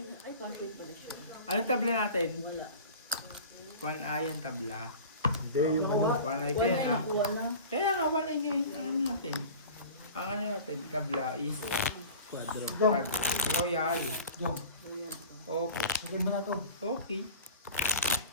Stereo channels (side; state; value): both; inverted; correlation -0.39